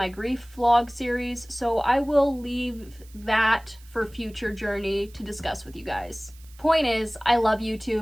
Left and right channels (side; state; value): right; noise; hiss, 25 dB below the sound